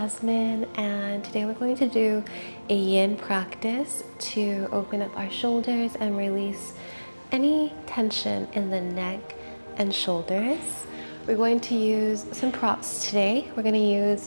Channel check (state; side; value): inverted; both; correlation -1.00